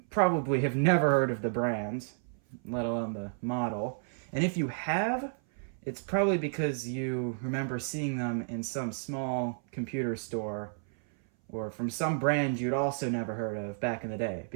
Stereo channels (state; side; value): silent; left; 57 dB below the other